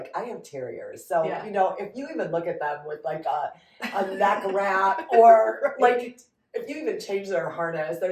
I have terriers. So, you know, if you even look at them with like a neck wrap or like if you even change their harness, they're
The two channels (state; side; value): identical; both; correlation 1.00